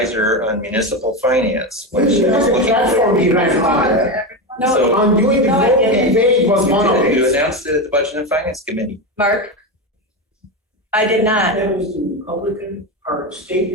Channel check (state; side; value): normal; both; correlation 0.15